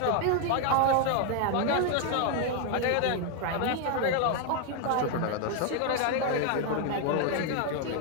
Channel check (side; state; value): both; different; correlation 0.00